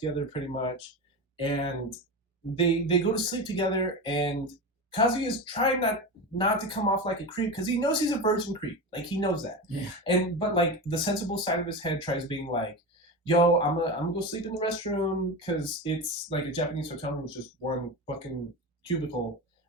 pretty much. And they go to sleep together and Kazuya is trying not to come off like a creep because he knows he's a virgin creep. Like he knows that. Yeah. And but like the sensible side of his head tries being like, yo, I'm gonna go sleep in the restroom because it's like a Japanese hotel room is just one fucking cubicle.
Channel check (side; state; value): both; normal; correlation 0.23